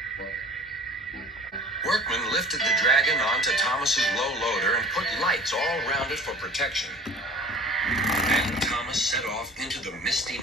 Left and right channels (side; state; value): both; normal; correlation 0.45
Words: Workmen lifted the dragon onto Thomas's low loader and put lights all around it for protection. Then Thomas set off into the misty